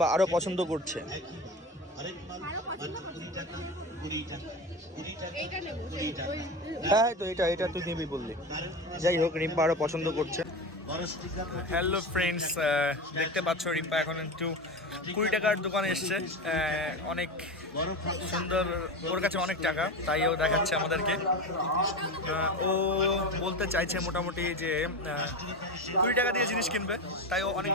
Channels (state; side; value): normal; both; correlation 0.24